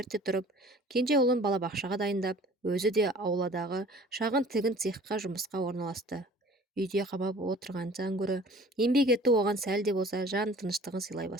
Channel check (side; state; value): both; normal; correlation 0.48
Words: тұрып, кенже ұлын балабақшаға дайындап, өзі де ауладағы шағын тігін цехқа жұмысқа орналасты. Үйде қамап отырғаннан гөрі еңбек ету оған сәл де болса жан тыныштығын сыйлай